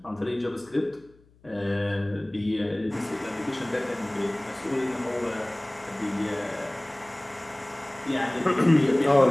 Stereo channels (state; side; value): noise; left; hum, 29 dB below the sound